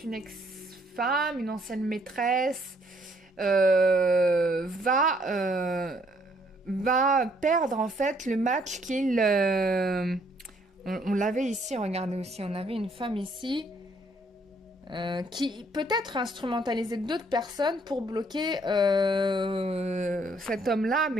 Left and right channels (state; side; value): normal; both; correlation 0.66